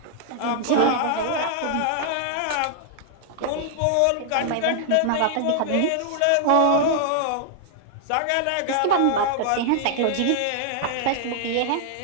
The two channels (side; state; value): both; different; correlation -0.01